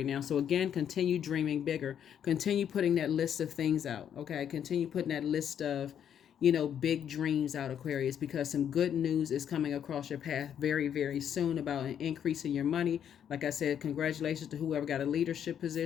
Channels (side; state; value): right; quieter; 9.0 dB